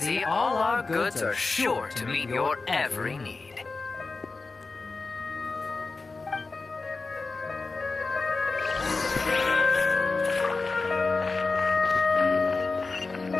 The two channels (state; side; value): quieter; right; 3.9 dB